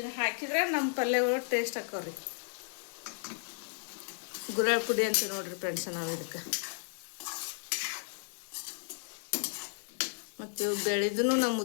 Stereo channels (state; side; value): silent; right; digital silence